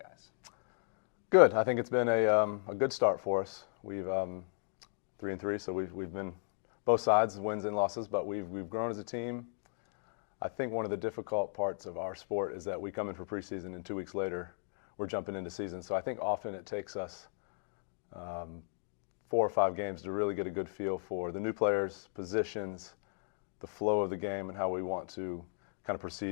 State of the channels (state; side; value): silent; right; digital silence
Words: Good. I think it's been a good start for us. We've 3-3, so we've been both sides, wins and losses, but we've grown as a team. I think one of the difficult parts of our sport is that we come in for preseason and 2 weeks later we're jumping into season. So I think often it takes us 4 or 5 games to really get a good feel for the new players, positions, the flow of the game, and how we want to kind of